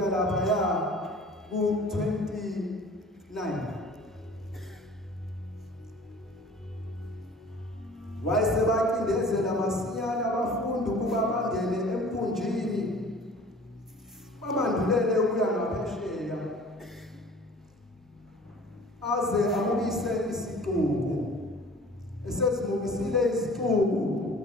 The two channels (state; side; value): normal; both; correlation 0.46